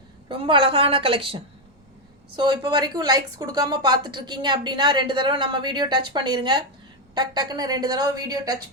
ரொம்ப அழகான கலெக்ஷன். ஸோ இப்போ வரைக்கும் லைக்ஸ் கொடுக்காம பார்த்துட்ருக்கீங்க அப்படின்னா 2 தடவை நம்ம வீடியோ டச் பண்ணிடுங்க. டக்குன்னு 2 தடவை வீடியோ டச்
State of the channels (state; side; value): normal; both; correlation 0.04